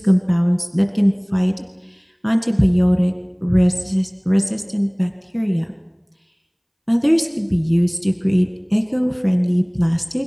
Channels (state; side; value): identical; both; correlation 1.00